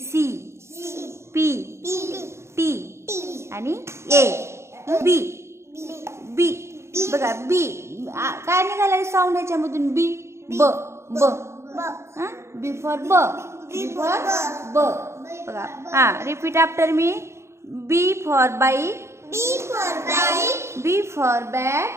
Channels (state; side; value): late; left; 0.13 ms